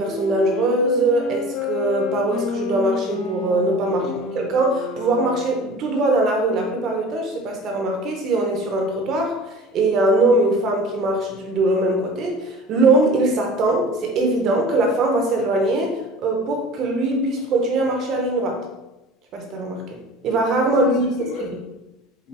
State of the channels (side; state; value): both; normal; correlation 0.41